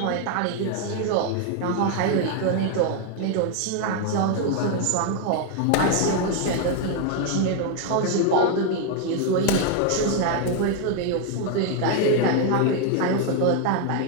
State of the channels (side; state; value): both; different; correlation 0.00